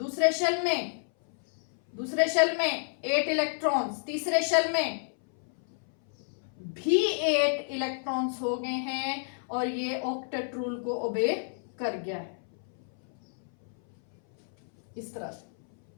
शेल में 8 इलेक्ट्रॉन्स, तीसरे शेल में भी 8 इलेक्ट्रॉन्स हो गए हैं और ये ऑक्टेट रूल को ओबे कर गया है इस तरह से।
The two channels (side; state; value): right; silent; 58 dB below the other